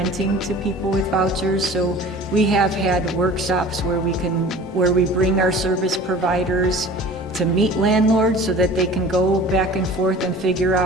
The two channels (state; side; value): normal; both; correlation 0.43